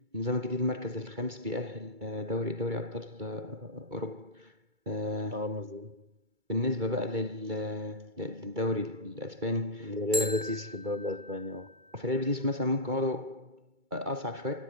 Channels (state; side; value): late; left; 2.3 ms